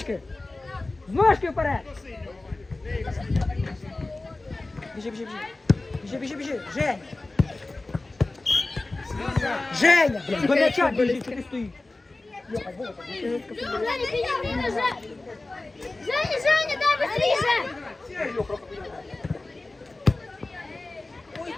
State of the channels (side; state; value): right; quieter; 3.1 dB